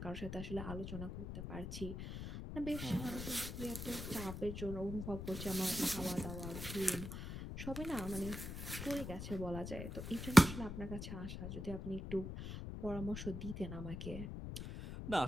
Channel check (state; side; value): noise; left; rumble, 7 dB below the sound